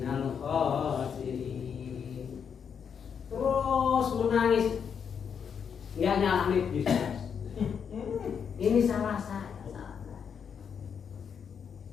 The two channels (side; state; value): right; quieter; 7.1 dB